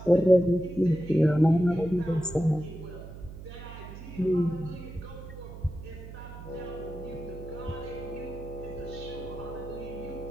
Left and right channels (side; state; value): right; noise; hum, 13 dB below the sound